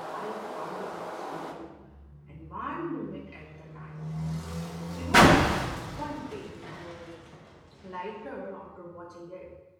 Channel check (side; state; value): both; identical; correlation 1.00